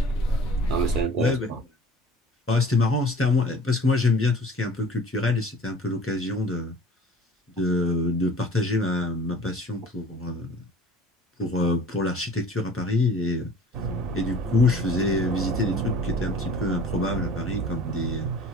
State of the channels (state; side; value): normal; both; correlation 0.46